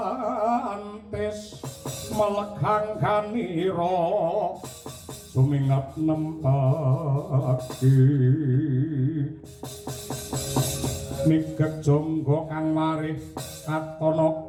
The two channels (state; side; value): identical; both; correlation 1.00